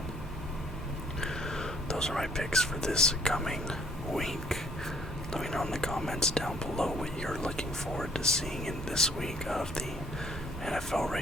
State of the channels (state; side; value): normal; both; correlation 0.62